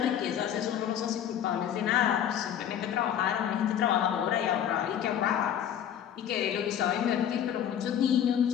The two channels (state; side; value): quieter; right; 9.6 dB